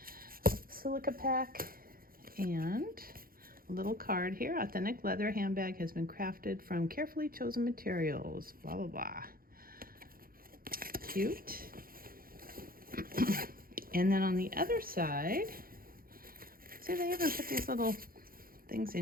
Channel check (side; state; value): left; late; 0.42 ms